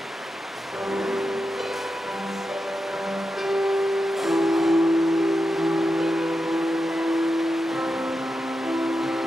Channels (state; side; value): normal; both; correlation 0.89